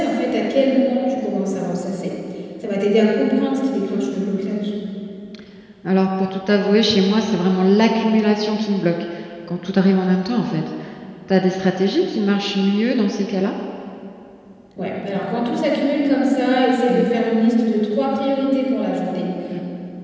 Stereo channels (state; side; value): identical; both; correlation 1.00